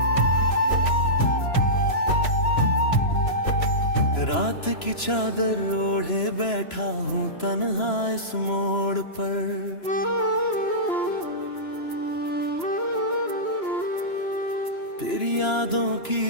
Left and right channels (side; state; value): right; late; 2.9 ms